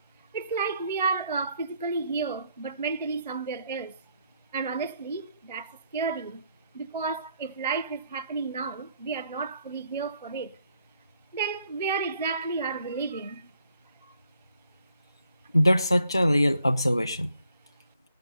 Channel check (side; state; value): both; inverted; correlation -0.71